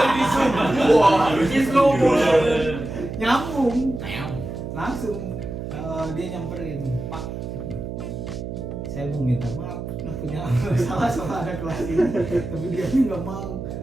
Nyambung. Langsung dia nyamperin, Pak. Saya mau minta maaf, punya salah sama anak kelas ini, tapi dia nggak mau.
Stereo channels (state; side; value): noise; right; hum, 7 dB below the sound